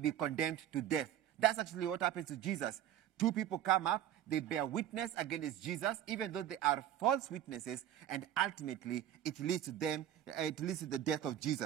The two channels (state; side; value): quieter; left; 11.2 dB